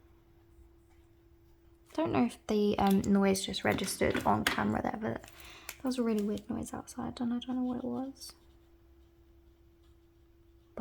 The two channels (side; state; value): both; identical; correlation 1.00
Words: Don't know if the noise just registered on camera there, but that was a really weird noise outside and I don't know what it was.